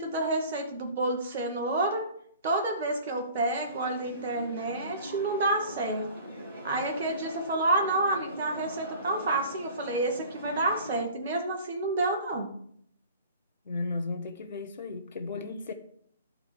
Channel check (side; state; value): both; inverted; correlation -0.45